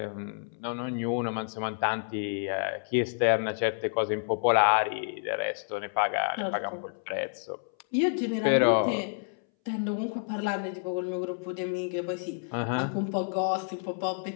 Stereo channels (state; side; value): silent; right; 58 dB below the other